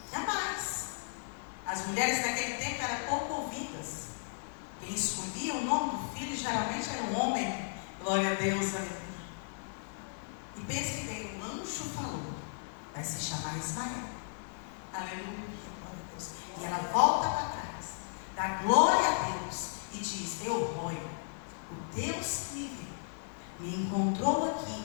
Jamais. As mulheres naquele tempo eram pouco ouvidas. Quem escolhia o nome do filho geralmente era um homem. Glória a Deus, aleluia. E pense bem, o anjo falou, vai se chamar Ismael. Aleluia, glória a Deus. E ela volta para trás, dá glória a Deus e diz: Elroi, o Deus que me viu, me encontrou aqui,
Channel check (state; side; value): silent; right; digital silence